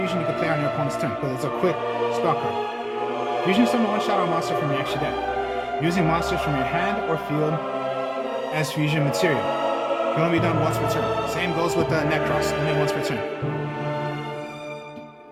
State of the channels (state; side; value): identical; both; correlation 1.00